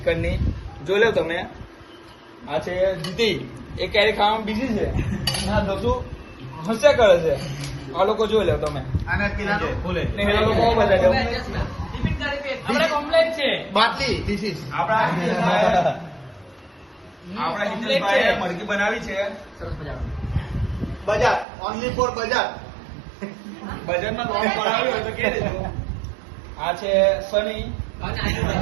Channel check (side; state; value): left; drops out; at 21.5 s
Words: જોઈ લો તમે. આ છે જીતી, એ કેરી ખાવામાં બીજી છે. ના દોસ્તો હસ્યા કરે છે. આ લોકો જોઈ લો તમે. અને પેલા ભૂલે ને એ લોકો બહુ બધા છે. આપણે કમ્પ્લેટ છે બાટલી ધીસ ઇઝ આપણા હિતેશભાઈએ મરઘી બનાવી છે. બજાર ઓનલી ફોર બજાર. બજારમાં લોન પડાવ્યો હોય તો કે દેજો. આ છે સની,